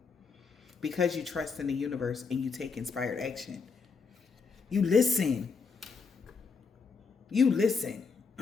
Because you trust in the universe and you take inspired action. You listen. You listen.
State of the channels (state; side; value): quieter; right; 5.1 dB